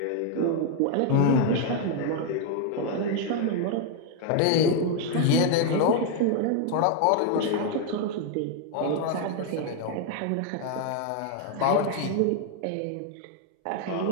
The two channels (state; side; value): different; both; correlation 0.01